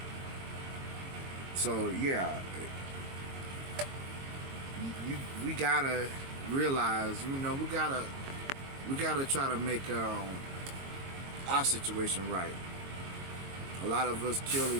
So yeah, we gotta realize, we gotta try to make our situation right. A lot of us kill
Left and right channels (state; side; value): late; left; 22 ms